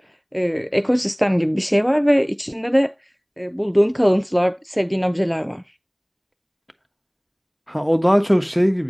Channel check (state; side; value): identical; both; correlation 1.00